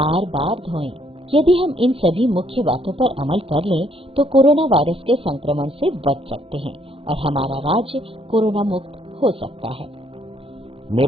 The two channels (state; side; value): late; left; 0.27 ms